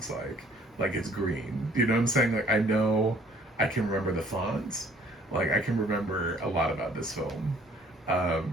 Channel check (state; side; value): normal; both; correlation 0.58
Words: like. Like, it's green. You know what I'm saying? Like, I know I can remember the fonts. Like, I can remember a lot about this film.